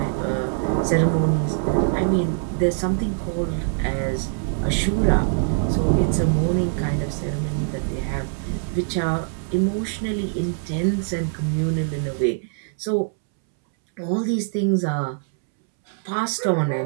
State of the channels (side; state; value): left; silent; 63 dB below the other